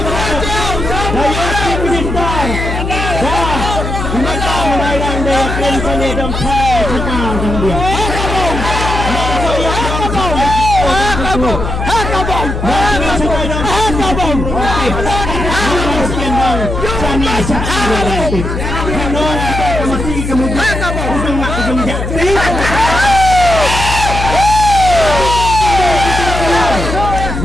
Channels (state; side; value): noise; left; hum, 4 dB below the sound